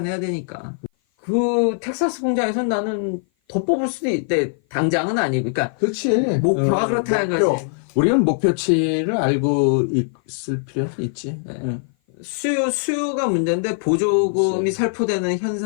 되니까. 그 텍사스 공장에선 나는 더 뽑을 수도 있대. 당장은 아니고. 그러니까 그렇지. 목표가 그렇다는 목표. 거지. 우리는 목표치를 알고 있을 필요는 있지. 응. 수요가 문제인데 보조금이 그치. 살포되는 현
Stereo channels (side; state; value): right; silent; 56 dB below the other